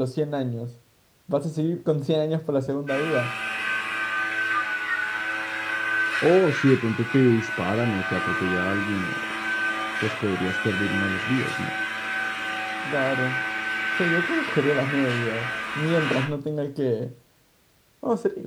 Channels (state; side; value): identical; both; correlation 1.00